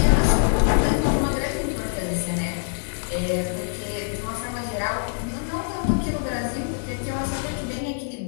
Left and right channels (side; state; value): right; silent; 56 dB below the other